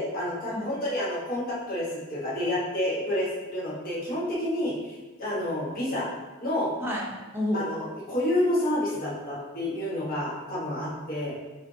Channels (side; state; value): both; normal; correlation 0.46